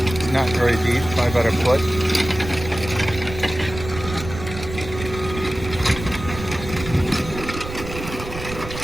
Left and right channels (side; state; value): right; noise; rumble, 10 dB below the sound